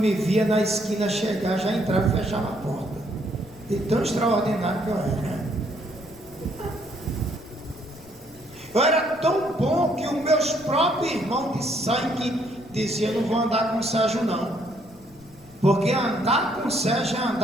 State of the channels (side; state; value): left; noise; rumble, 25 dB below the sound